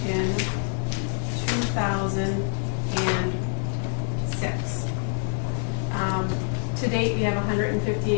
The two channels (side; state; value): right; silent; 61 dB below the other